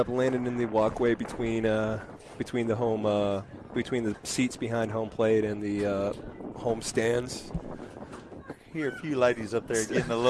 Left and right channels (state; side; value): identical; both; correlation 1.00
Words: landing in the walkway between the seats behind home plate and the home stands. Hear a few ladies up there getting a